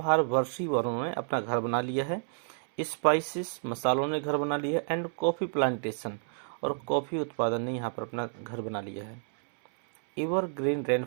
वर्षी वनों ने अपना घर बना लिया है। स्पाइसेस, मसालों ने घर बना लिया है। एंड कॉफ़ी प्लांटेशन, और कॉफ़ी उत्पादन ने यहाँ पर अपना घर बना लिया है। एवर ग्रीन रेन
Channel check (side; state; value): left; silent; 58 dB below the other